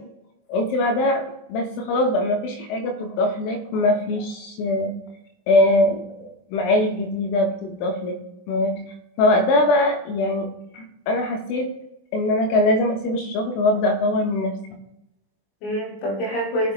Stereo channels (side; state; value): right; late; 25 ms